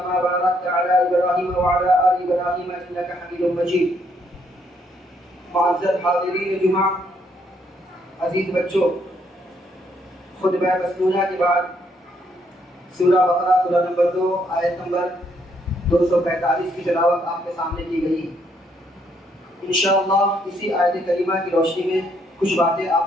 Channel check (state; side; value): normal; both; correlation 0.71